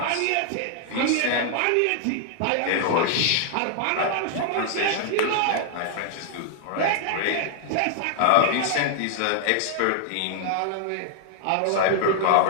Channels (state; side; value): different; both; correlation 0.00